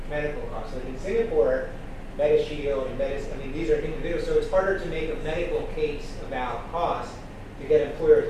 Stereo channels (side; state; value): both; identical; correlation 1.00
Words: medical costs. Like in Singapore, MediShield and these are individuals, so it's harder to make a medical case about cost to get